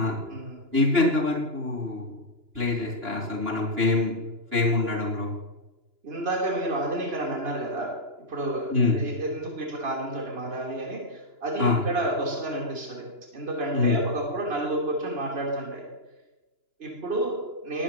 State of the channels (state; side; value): late; left; 2.9 ms